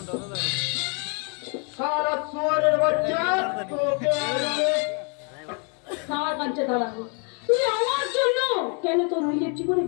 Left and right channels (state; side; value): quieter; right; 37.1 dB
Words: সারা সোয়ারের বাচ্চা তোকে আজকে দাঁড়া কাঞ্চা, দাঁড়া। তুই আমার জন্য কেন তোর নিজের জীবনে